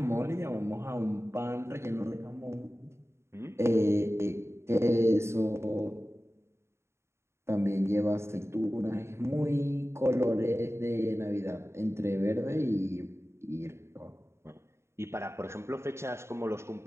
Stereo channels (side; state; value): left; late; 0.13 ms